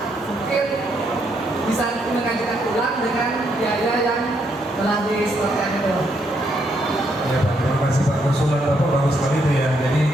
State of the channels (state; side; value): normal; both; correlation 0.75